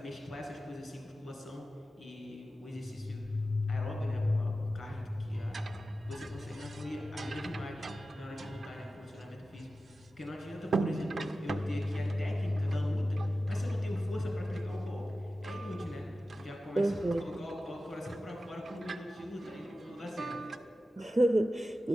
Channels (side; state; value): both; normal; correlation 0.94